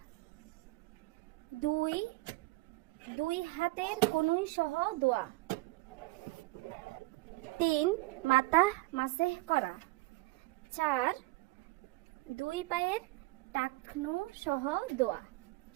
2, দুই হাতের কনুই সহ ধোয়া। 3, মাথা মাসেহ করা। 4, দুই পায়ের টাকনু সহ ধোয়া।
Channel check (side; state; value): left; quieter; 21.5 dB